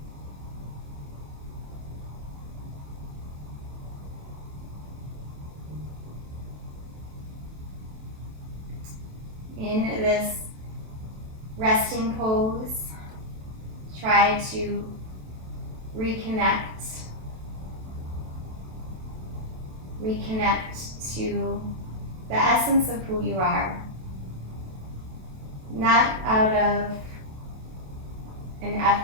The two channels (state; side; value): late; left; 27 ms